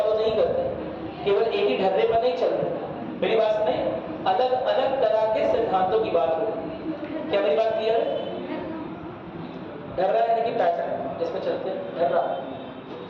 नहीं करते, केवल एक ही ढर्रे पर नहीं चलते। मेरी बात सुनाई? अलग अलग तरह के सिद्धांतों की बात होगी। क्या मेरी बात क्लियर है? ढर्रा यानी कि पैटर्न जिसमें चलते हैं, ढर्रा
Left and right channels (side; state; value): both; identical; correlation 1.00